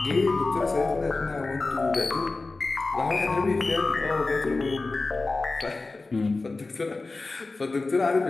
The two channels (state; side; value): quieter; right; 3.5 dB